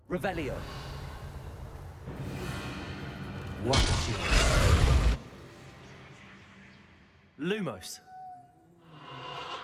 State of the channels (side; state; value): both; identical; correlation 1.00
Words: Revelio. Watch it. Lumos.